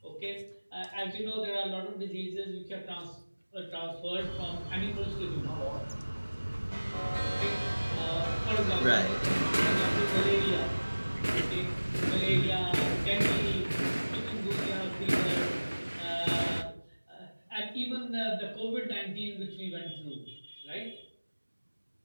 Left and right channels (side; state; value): both; inverted; correlation -1.00